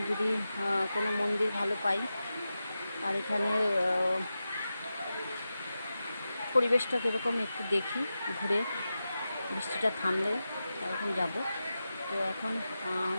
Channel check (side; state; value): both; inverted; correlation -0.92